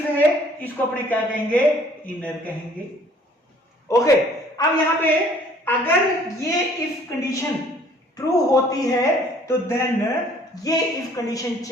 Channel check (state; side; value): normal; both; correlation 0.56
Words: है इसको अपने क्या कहेंगे, इनर कहेंगे। ओके, अब यहां पे अगर ये इफ कंडीशन ट्रू होती है तो देन ये इफ कंडीशन